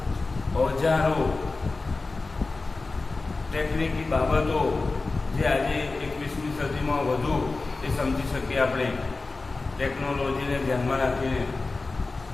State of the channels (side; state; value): right; quieter; 3.6 dB